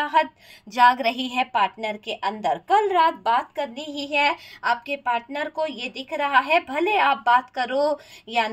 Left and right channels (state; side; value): identical; both; correlation 1.00